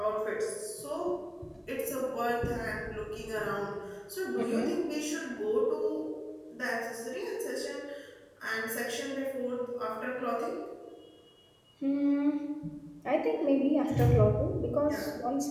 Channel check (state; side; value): identical; both; correlation 1.00